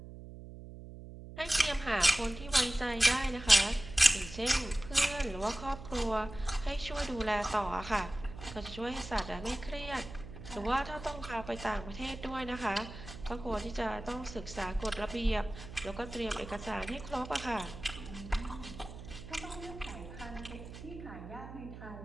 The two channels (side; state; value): right; noise; hum, 13 dB below the sound